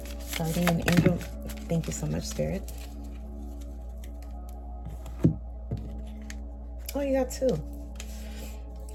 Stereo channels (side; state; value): both; identical; correlation 1.00